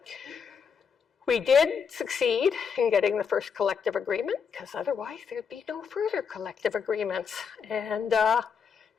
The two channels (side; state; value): right; quieter; 6.4 dB